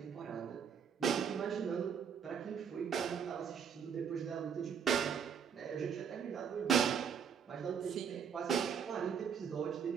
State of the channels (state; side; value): quieter; left; 7.3 dB